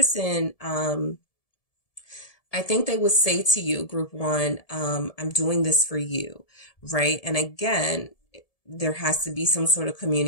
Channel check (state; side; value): late; right; 1.7 ms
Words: I think they would say to you, group one, I'm doing this for you, right? And again, there has to be some sort of